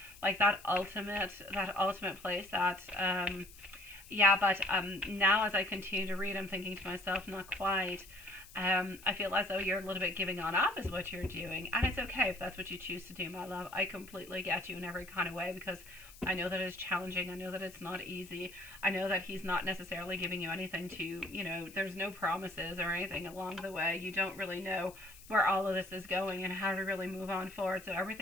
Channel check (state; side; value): noise; left; hiss, 20 dB below the sound